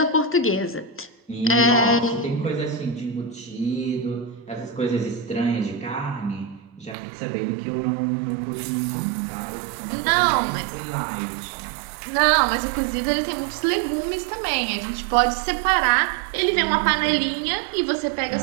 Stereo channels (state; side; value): drops out; left; at 7.0 s